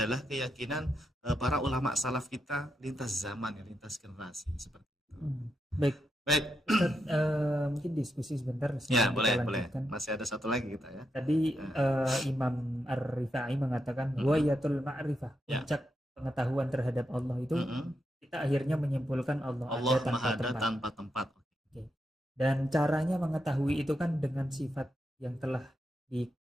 keyakinan para ulama salaf kita lintas zaman, ya, lintas generasi seperti itu. Baik. Ustaz, mungkin diskusi sebentar. Ya, boleh. Masih ada satu lagi kita ya. Tadi Imam Ar-Rifa'i mengatakan wayatul ma'rifah, puncak pengetahuan terhadap Allah itu kita akhirnya menyimpulkan Allah ada tanpa tempat. Okay. Dan caranya mengetahui itu kan dengan sifat yang telah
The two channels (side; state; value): both; normal; correlation 0.84